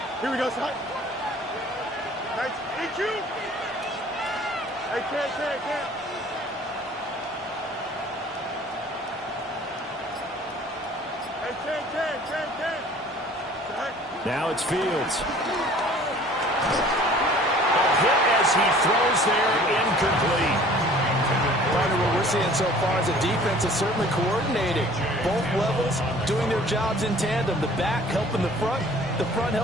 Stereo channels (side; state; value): both; normal; correlation 0.50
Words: Here we go, son. Nice. Thank you. Hey, can't. Hey, can't. Now it's Fields. A hit as he throws there, incomplete. Partner, what we're seeing so far is the defense is certainly coordinated. Both levels doing their jobs in tandem. The back helping the front